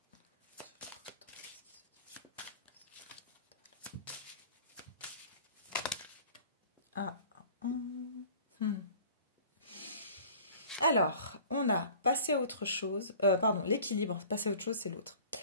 Alors, on a passé à autre chose. Pardon, l'équilibre. Passer à autre chose, c'est l'autre.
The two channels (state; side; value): inverted; both; correlation -0.45